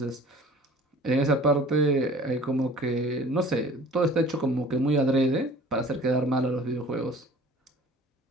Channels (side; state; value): both; normal; correlation 0.47